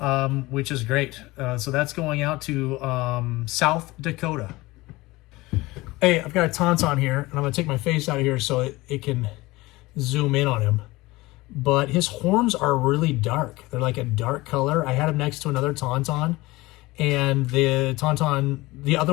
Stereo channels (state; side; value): quieter; right; 20.5 dB